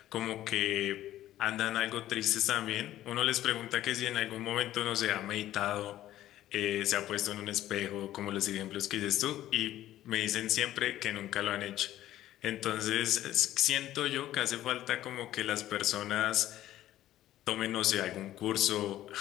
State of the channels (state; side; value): quieter; right; 13.6 dB